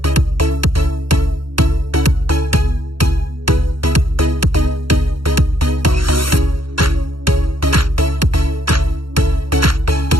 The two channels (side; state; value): left; late; 0.73 ms